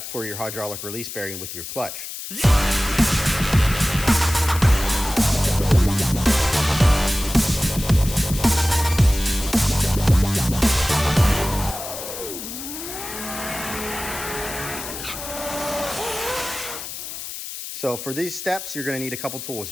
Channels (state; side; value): noise; left; hiss, 9 dB below the sound